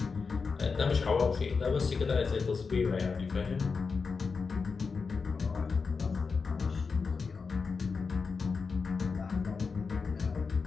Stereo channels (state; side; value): quieter; right; 4.9 dB